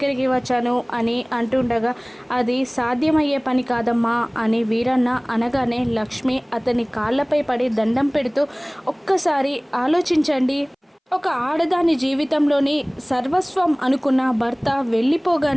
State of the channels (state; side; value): identical; both; correlation 1.00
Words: వచ్చాను అని అంటుండగా, అది సాధ్యమయ్యే పని కాదమ్మా అని వీరన్న అనగానే లక్ష్మి అతని కాళ్ళపై పడి దండం పెడుతూ, ఒక్కసారి ఆలోచించండి. ఒక ఆడదాని జీవితంలోని సర్వస్వం అనుకున్న భర్త